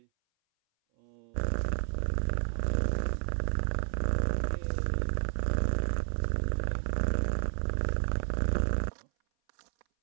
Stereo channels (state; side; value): silent; left; 57 dB below the other